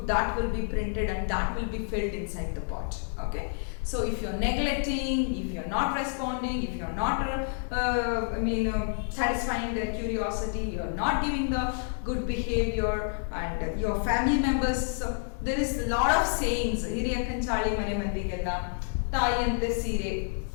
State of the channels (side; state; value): right; silent; digital silence